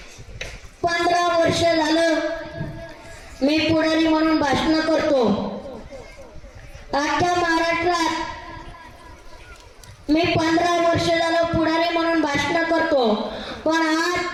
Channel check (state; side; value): identical; both; correlation 1.00